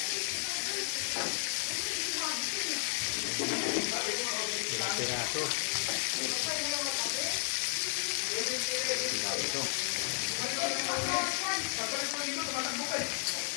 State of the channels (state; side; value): silent; right; digital silence